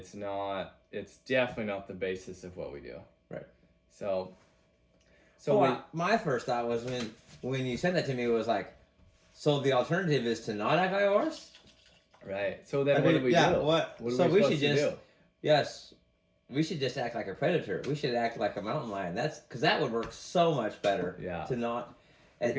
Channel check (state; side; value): identical; both; correlation 1.00